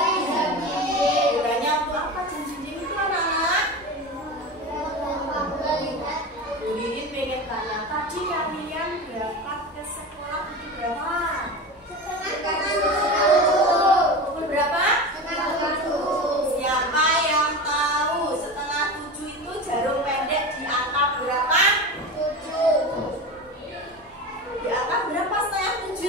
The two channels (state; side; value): normal; both; correlation 0.27